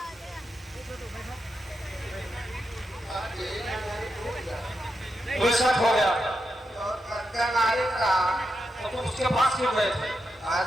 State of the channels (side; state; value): both; normal; correlation 0.86